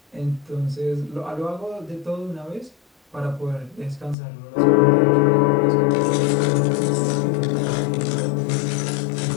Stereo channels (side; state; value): right; drops out; at 4.2 s